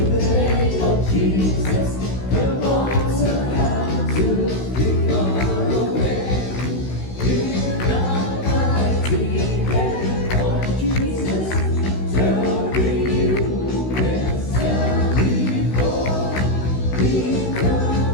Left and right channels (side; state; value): right; late; 16 ms